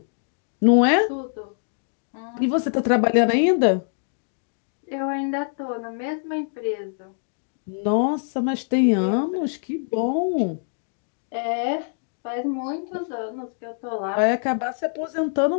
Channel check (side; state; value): right; silent; digital silence